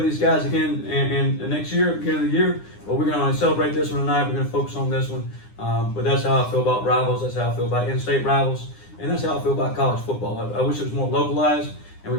these guys again and next year, beginning of the year. But we're going to celebrate this one tonight. We're going to focus on this one. But that's how I feel about rivals. That's how I feel about in-state rivals, and that's how I feel about college football. I wish it was more localized, and we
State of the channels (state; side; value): late; right; 9.8 ms